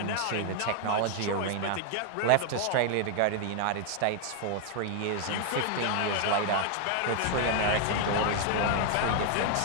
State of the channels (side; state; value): both; different; correlation 0.00